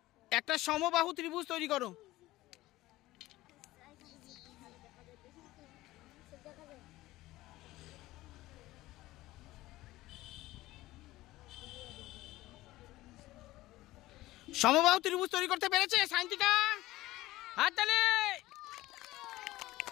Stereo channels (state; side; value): quieter; right; 17.5 dB